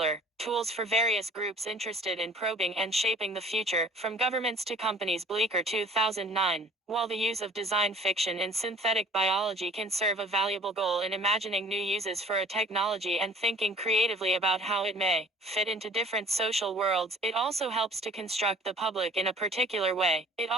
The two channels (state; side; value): normal; both; correlation 0.51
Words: tools for various groups interested in probing and shaping the future, from governments to companies. Bleecker 2009. While the use of design fiction in synthetic biology can serve a valuable goal in imagining new uses for a technology and thinking creatively about how it may fit into different social worlds, it also helps to construct the public in a particular way. It